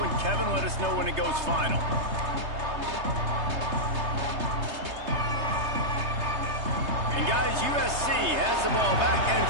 Kevin. Let us know when it goes final. And guys, USC has the ball back and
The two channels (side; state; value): left; late; 3.3 ms